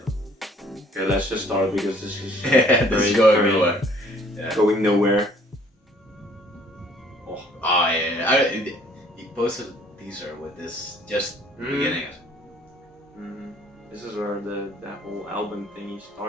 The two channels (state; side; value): normal; both; correlation 0.58